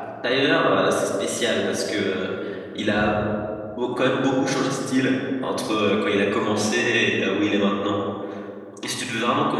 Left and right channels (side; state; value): both; identical; correlation 1.00